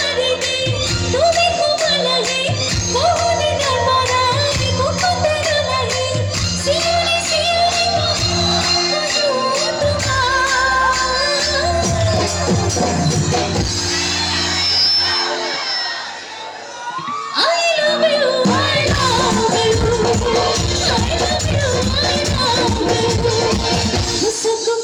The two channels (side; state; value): both; identical; correlation 1.00